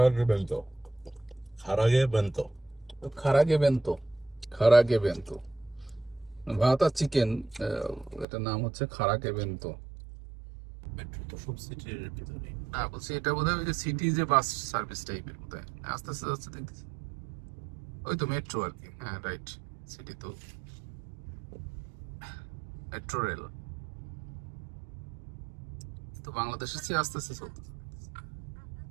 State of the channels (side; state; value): left; drops out; at 8.2 s